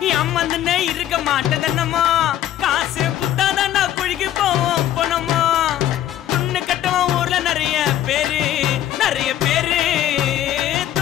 அம்மந்துன்னு இருக்க மாட்டதனமோ, காசு குத்தாதாண்டா குழிக்கு போவோம் போனமோ. துண்ணு கட்டவன் ஊர்ல நிறைய பேரு, நிறைய பேரு.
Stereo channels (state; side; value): quieter; right; 12.2 dB